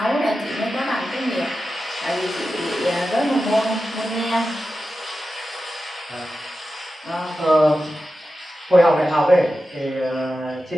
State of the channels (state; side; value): normal; both; correlation 0.92